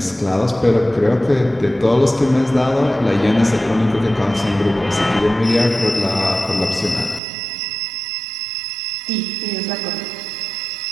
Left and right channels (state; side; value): drops out; left; at 7.2 s